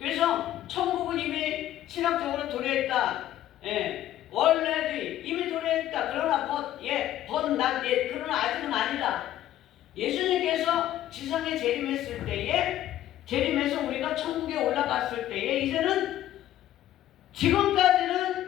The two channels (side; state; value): right; quieter; 12.9 dB